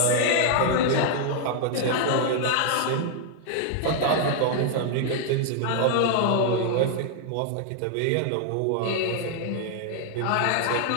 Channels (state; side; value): different; both; correlation 0.00